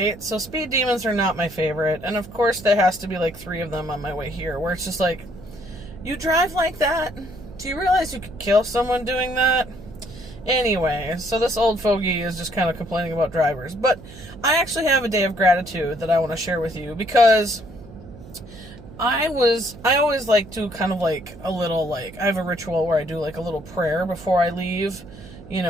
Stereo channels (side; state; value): right; noise; hum, 18 dB below the sound